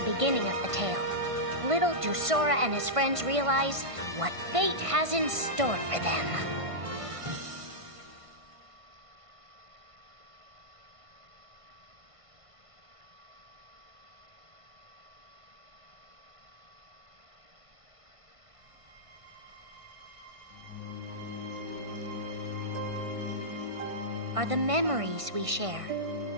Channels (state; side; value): late; left; 1.5 ms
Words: beginning of the tale. Little do Sora and his friends realize what fate has in store for them. Are the memories we share